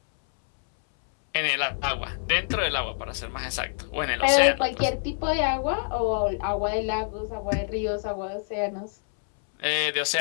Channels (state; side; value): silent; right; 61 dB below the other